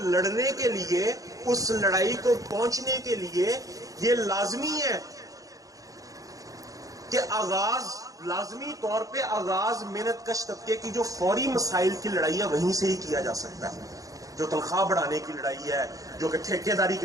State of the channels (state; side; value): late; left; 0.17 ms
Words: کے لیے، اس لڑائی کو پہنچنے کے لیے یہ لازمی ہے کہ لازمی طور پہ آغاز محنت کش طبقے کی جو فوری مسائل کی لڑائی ہے وہیں سے ہی کیا جا سکتا ہے. جو تنخواہ بڑھانے کی لڑائی ہے، جو کہ ٹھیکے داری